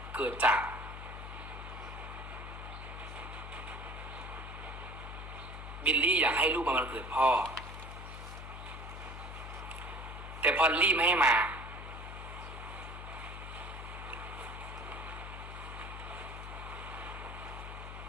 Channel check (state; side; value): noise; left; hum, 9 dB below the sound